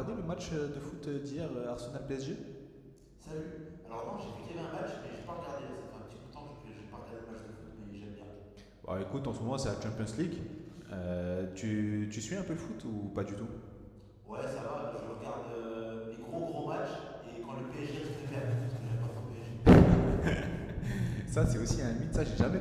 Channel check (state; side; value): identical; both; correlation 1.00